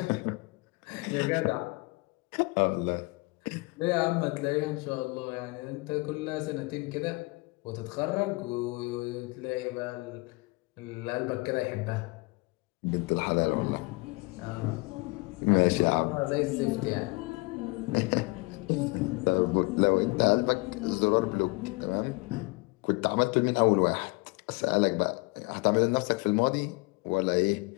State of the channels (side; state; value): right; quieter; 26.6 dB